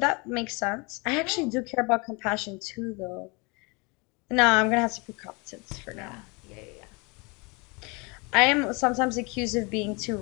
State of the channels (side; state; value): right; quieter; 29.1 dB